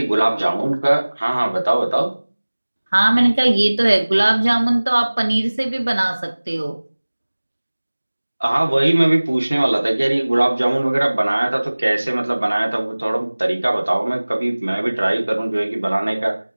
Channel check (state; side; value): inverted; both; correlation -1.00